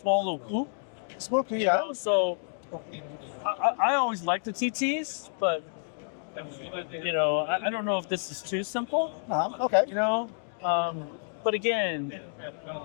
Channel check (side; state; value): right; silent; digital silence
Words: little coupe. Small coupe, yeah. So I always liked the TTs, but I don't know if this is too simple. Okay. But again,